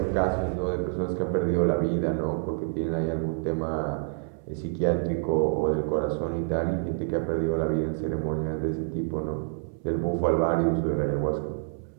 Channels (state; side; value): silent; left; digital silence